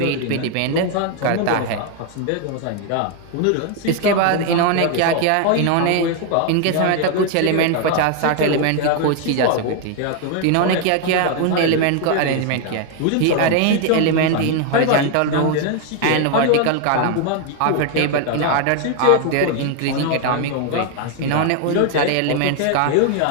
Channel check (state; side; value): different; both; correlation 0.01